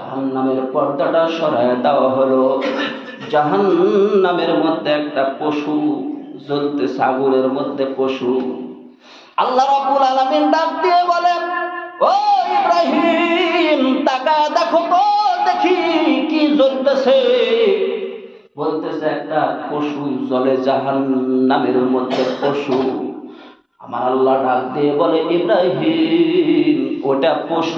পর্দাটা সরায় দেওয়া হলো। জাহান্নামের মধ্যে একটা পশু জ্বলতেছে, আগুনের মধ্যে পশু। আল্লাহ রাব্বুল আলামিন ডাক দিয়ে বলেন, ও ইব্রাহিম, তাকায় দেখো তো, দেখি কি জ্বলতেছে। বলতেছে একটা পশু জ্বলে, জাহান্নামের মধ্যে পশু। আমার আল্লাহ ডাক দিয়ে বলে, ইব্রাহিম ওটা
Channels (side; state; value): both; identical; correlation 1.00